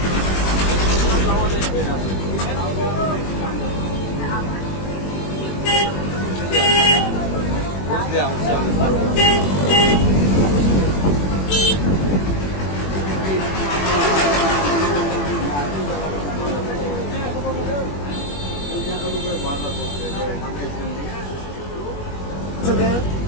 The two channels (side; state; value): right; late; 21 ms